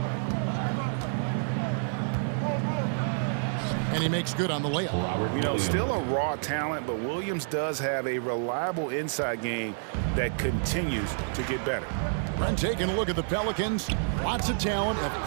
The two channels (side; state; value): left; silent; digital silence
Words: And he makes good on the layup. You know, still a raw talent, but Williams does have a reliable inside game that continues to get better. Brent taking a look at the Pelicans. Lots of talent